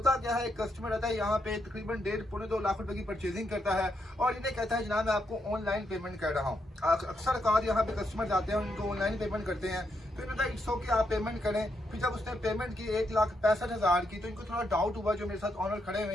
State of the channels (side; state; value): both; normal; correlation 0.80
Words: क्या है, कस्टमर आता है यहाँ पे, तकरीबन 1.5-2 लाख रुपए की परचेजिंग करता है और इन्हें कहता है जनाब मैं आपको ऑनलाइन पेमेंट कर रहा हूँ। अक्सर कार यहाँ पे कस्टमर जाते हैं, उनको ऑनलाइन पेमेंट करते हैं, तो इन्होंने कहा इट्स ओके आप पेमेंट करें। फिर जब उसने पेमेंट की 1,65,000 की, तो इनको थोड़ा डाउट हुआ, जो मेरे साथ ऑनर खड़े हुए